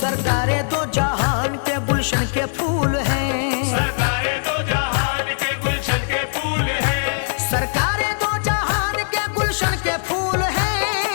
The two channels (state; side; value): silent; right; digital silence